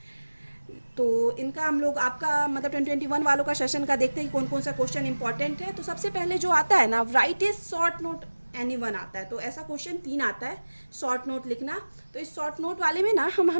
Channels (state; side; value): inverted; both; correlation -1.00